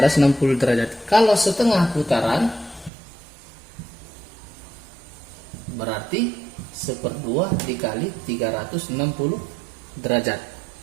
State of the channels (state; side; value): drops out; left; at 2.9 s